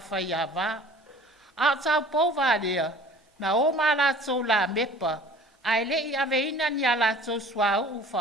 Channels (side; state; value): both; normal; correlation 0.47